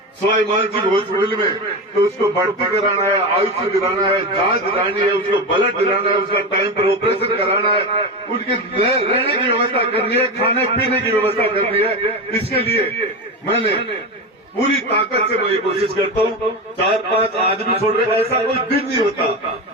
सवाई मानसिंह हॉस्पिटल में तो उसको भर्ती कराना है, आयुष दिलाना है, जांच दिलानी है, उसको ब्लड दिलाना है, उसका टाइम पर ऑपरेशन कराना है, उनके रहने की व्यवस्था करनी है, खाने पीने की व्यवस्था करनी है। इसके लिए मैंने पूरी ताकत से मैं ये कोशिश करता हूं। 4-5 आदमी छोड़ रहे, ऐसा कोई दिन नहीं होता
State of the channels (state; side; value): normal; both; correlation 0.20